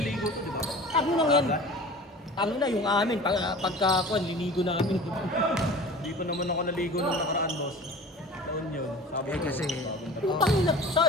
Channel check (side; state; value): both; normal; correlation 0.40